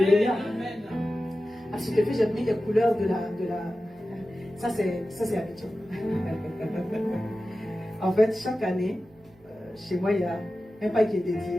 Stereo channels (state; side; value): noise; right; hum, 29 dB below the sound